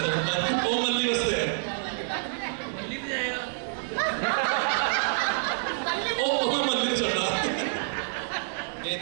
तो वो मल्ली बसते हैं मल्ली भी जाएगा ओ मैं मल्ली नहीं चढ़ा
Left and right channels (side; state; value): left; silent; digital silence